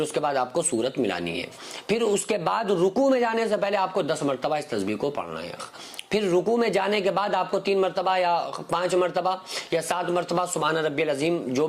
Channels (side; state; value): both; identical; correlation 1.00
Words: اس کے بعد آپ کو سورت ملانی ہے، پھر اس کے بعد رکوع میں جانے سے پہلے آپ کو 10 مرتبہ اس تسبیح کو پڑھنا ہے، پھر رکوع میں جانے کے بعد آپ کو 3 مرتبہ یا 5 مرتبہ یا 7 مرتبہ سبحان ربی العظیم، جو